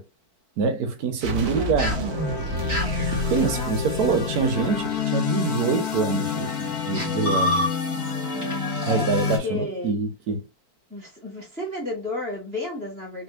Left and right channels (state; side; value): late; left; 4.5 ms